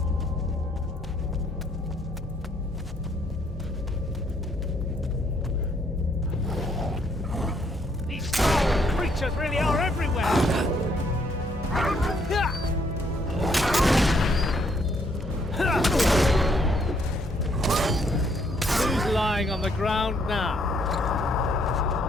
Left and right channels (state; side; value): normal; both; correlation 0.69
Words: These foul creatures really are everywhere! Who's lying on the ground now?